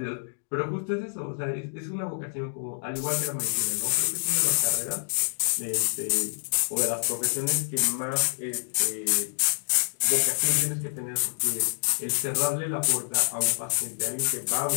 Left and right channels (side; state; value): right; silent; digital silence